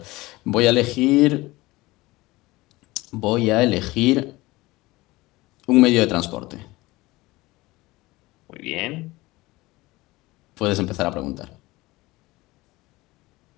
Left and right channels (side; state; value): right; quieter; 20.3 dB